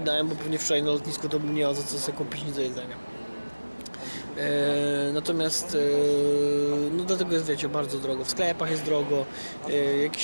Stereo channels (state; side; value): inverted; both; correlation -1.00